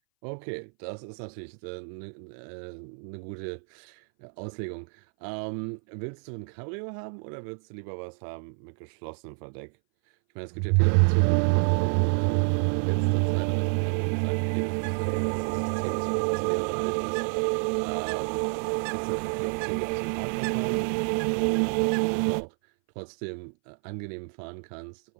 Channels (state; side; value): silent; left; 59 dB below the other